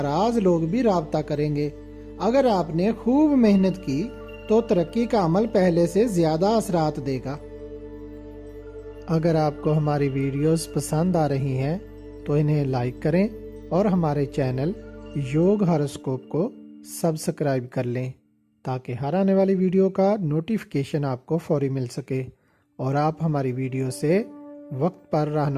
لوگ بھی رابطہ کریں گے۔ اگر آپ نے خوب محنت کی تو ترقی کا عمل پہلے سے زیادہ اثرات دے گا۔ اگر آپ کو ہماری ویڈیوز پسند آ رہی ہیں تو انہیں لائک کریں اور ہمارے چینل یوگ ہاروسکوپ کو سبسکرائب کر لیں تاکہ ہر آنے والی ویڈیو کا نوٹیفیکیشن آپ کو فوری مل سکے اور آپ ہماری ویڈیو سے وقت پر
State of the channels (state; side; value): identical; both; correlation 1.00